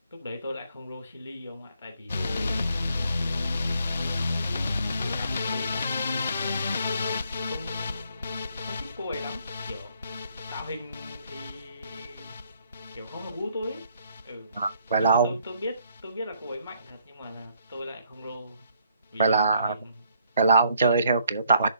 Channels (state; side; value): inverted; both; correlation -0.69